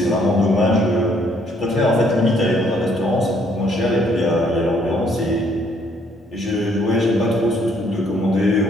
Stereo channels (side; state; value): both; normal; correlation 0.66